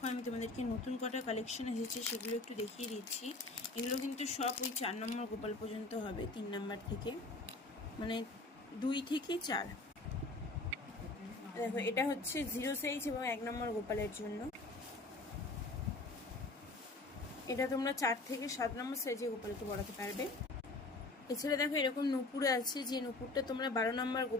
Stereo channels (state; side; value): quieter; right; 3.1 dB